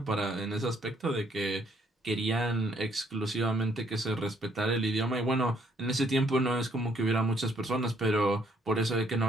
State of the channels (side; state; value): both; normal; correlation 0.68